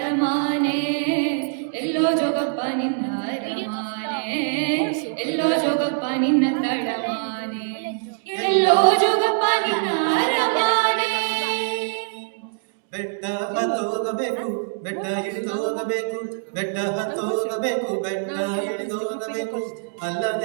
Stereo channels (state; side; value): silent; left; digital silence